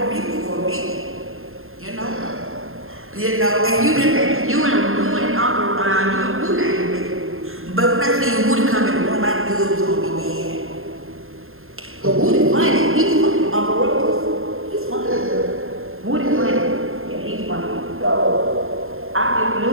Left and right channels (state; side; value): late; left; 0.61 ms